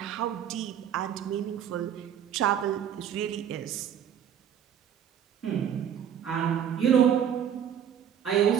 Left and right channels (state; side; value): quieter; left; 9.1 dB